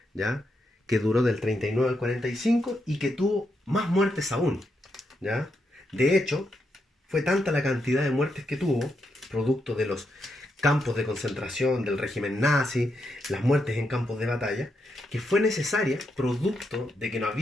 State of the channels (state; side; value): normal; both; correlation 0.82